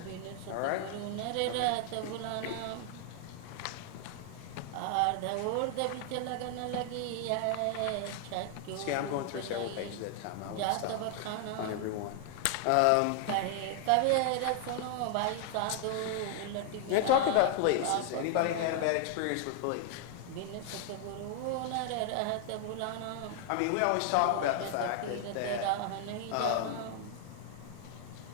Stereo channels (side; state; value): both; different; correlation 0.00